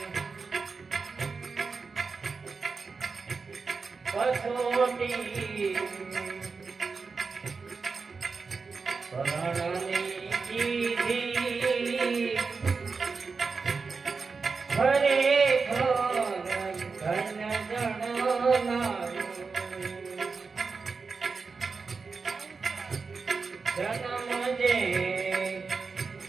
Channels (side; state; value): left; quieter; 4.7 dB